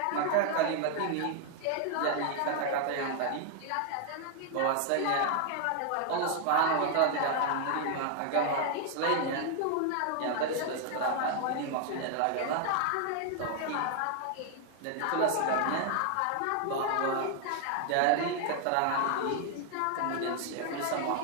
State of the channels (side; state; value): both; different; correlation 0.00